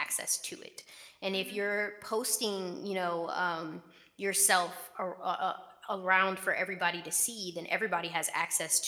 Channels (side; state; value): both; identical; correlation 1.00